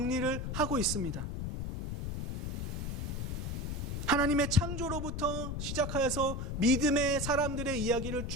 하고 있습니다. 하나님의 창조로부터 시작하여서 믿음의 사람들의 이야기를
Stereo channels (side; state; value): left; noise; rumble, 3 dB below the sound